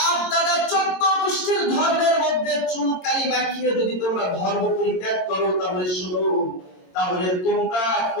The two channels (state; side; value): late; right; 22 ms